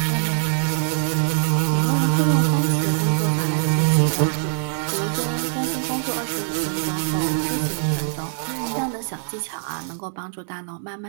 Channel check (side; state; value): left; silent; 64 dB below the other